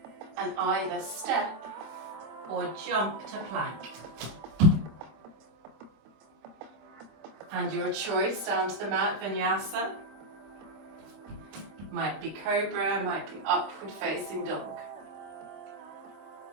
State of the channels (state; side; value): late; left; 25 ms